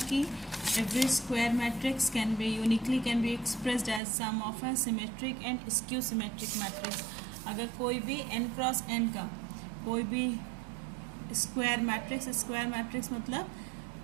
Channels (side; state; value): left; drops out; at 4.0 s